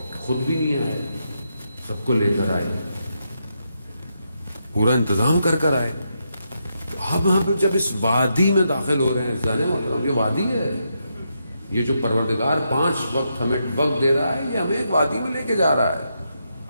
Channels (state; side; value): inverted; both; correlation -0.82